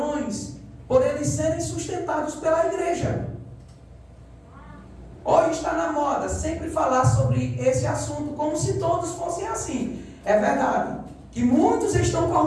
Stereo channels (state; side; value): identical; both; correlation 1.00